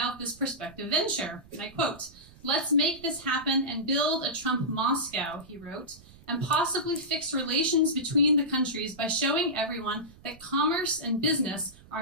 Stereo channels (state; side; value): noise; right; rumble, 23 dB below the sound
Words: this prospective venture, and I quote, "Let's make this happen and build a Trump Moscow," he wrote, "and possibly fix relations between the countries by showing everyone that commerce and business